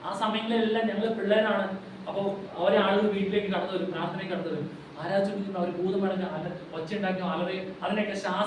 ആ സമയങ്ങളിലെല്ലാം ഞങ്ങൾ പിള്ളേരാണ്. അപ്പോൾ അവരെ ആളുകൾ വീട്ടിലേക്ക് കടന്നു വരും, പ്രാർത്ഥനയ്ക്ക് കടന്നു വരും, ആരാധിക്കുന്ന അവർ ഭൂതമടങ്ങ് ഒച്ച ഉണ്ടാക്കി അലറി അതിനെയൊക്കെ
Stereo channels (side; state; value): both; identical; correlation 1.00